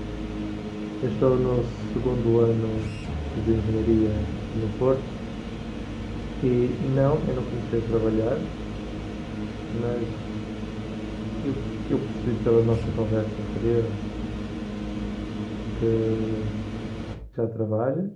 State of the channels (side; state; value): both; identical; correlation 1.00